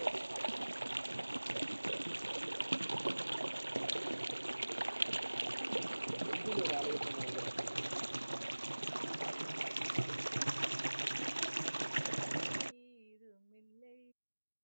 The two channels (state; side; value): inverted; both; correlation -1.00